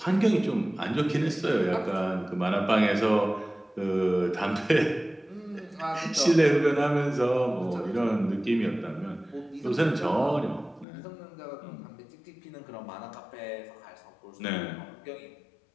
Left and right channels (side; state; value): right; drops out; at 10.9 s